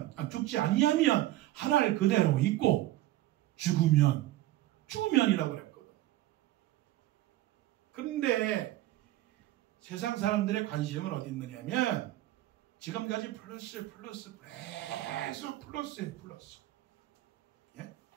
아니하면 한 알 그대로 있고, 죽으면이라고 그랬거든. 그런데 세상 사람들의 관심은 어디 있느냐면 지금까지 플러스 계속 플러스. 예?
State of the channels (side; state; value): left; quieter; 15.5 dB